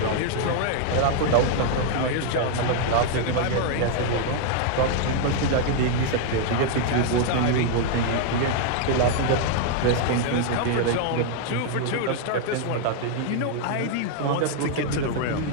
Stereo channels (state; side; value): different; both; correlation 0.00